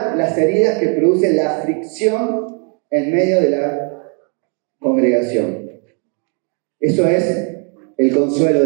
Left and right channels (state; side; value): quieter; left; 39.2 dB